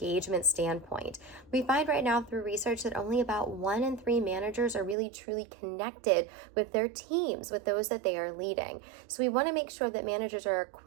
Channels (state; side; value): drops out; left; at 5.0 s